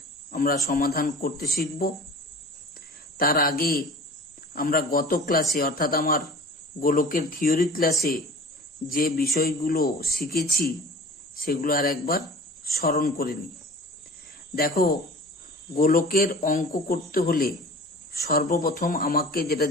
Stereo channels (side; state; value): both; normal; correlation 0.41